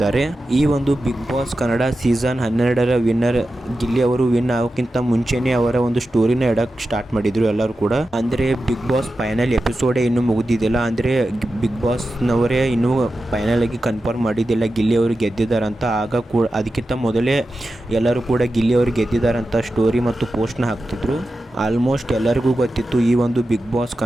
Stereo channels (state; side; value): normal; both; correlation 0.92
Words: ಈ ಒಂದು ಬಿಗ್ ಬಾಸ್ ಕನ್ನಡ ಸೀಸನ್ 12ರ ವಿನ್ನರ್ ಗಿಲ್ಲಿ ಅವರು ವಿನ್ ಆಗೋಕ್ಕಿಂತ ಮುಂಚೆನೆ ಅವರ ಒಂದು ಸ್ಟೋರಿನ ಇಡಕ್ ಸ್ಟಾರ್ಟ್ ಮಾಡಿದ್ರು ಎಲ್ಲರೂ ಕೂಡ. ಅಂದ್ರೆ ಬಿಗ್ ಬಾಸ್ ಫೈನಲ್ ಎಪಿಸೋಡೇ ಇನ್ನೂ ಮುಗಿದಿದ್ದಿಲ್ಲ. ಅಂದ್ರೆ ಬಿಗ್ ಬಾಸ್ ನವರೇ ಇನ್ನೂ ಫೈನಲ್ ಆಗಿ ಕನ್ಫರ್ಮ್ ಮಾಡಿದ್ದಿಲ್ಲ ಗಿಲ್ಲಿ ಅವರು ಗೆದ್ದಿದ್ದಾರೆ ಅಂತ. ಆಗ ಕೂಡ ಅದಕ್ಕಿಂತ ಮೊದಲೇ ಎಲ್ಲರೂ ಕೂಡ ಗಿಲ್ಲಿ ಅವರು ಗೆದ್ದಿದ್ದಾರಂತ ಸ್ಟೋರಿ ಮತ್ತು ಪೋಸ್ಟ್ನ ಹಾಕ್ತಿದ್ರು. ಆಲ್ಮೋಸ್ಟ್ ಎಲ್ಲರಿಗೂ ಗೊತ್ತಿತ್ತು ಈ ಒಂದು ಬಿಗ್ ಬಾಸ್